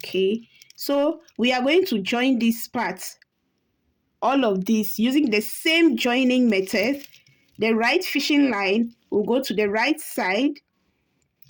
so we are going to join this part, all of this, using the same joining method. The right fishing line will go to the right side,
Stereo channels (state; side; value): identical; both; correlation 1.00